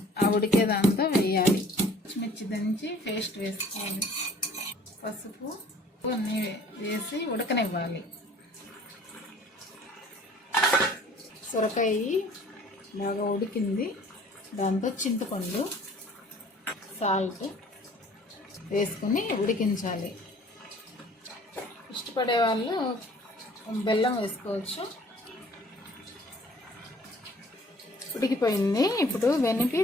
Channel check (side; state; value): both; normal; correlation 0.53